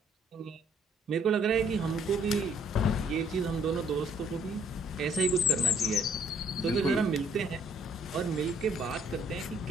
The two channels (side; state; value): both; normal; correlation 0.62